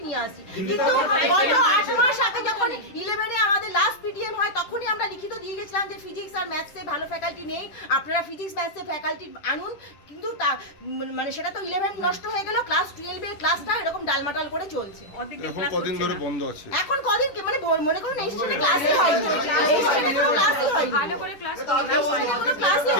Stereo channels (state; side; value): late; right; 10 ms